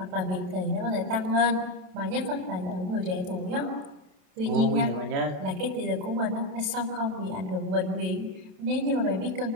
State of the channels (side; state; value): left; late; 27 ms